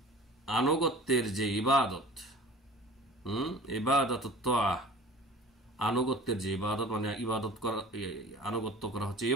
আনুগত্যের যে ইবাদত, ইবাদাতুত তাআহ, আনুগত্যের যে ইবাদত, মানে ইবাদত করা, আনুগত্য করা হচ্ছে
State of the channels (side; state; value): both; normal; correlation 0.43